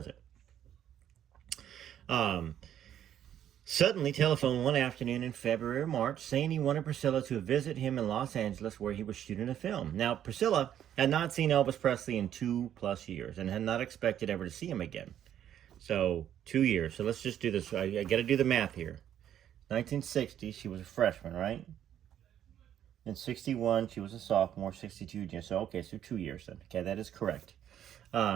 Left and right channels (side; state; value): left; quieter; 10.4 dB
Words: it? Suddenly telephoned one afternoon in February or March saying he wanted Priscilla to visit him in Los Angeles where he was shooting a film. Now, Priscilla had not seen Elvis Presley in 2+ years and had not expected ever to see him again. So, 2 years. So let's just do this. I got to do the math here. 1960, she was a freshman, right? In 61, she was a sophomore. 62, so okay, so 2 years then. Okay, that is correct.